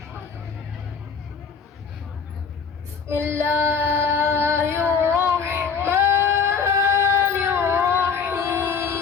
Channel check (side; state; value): right; quieter; 5.9 dB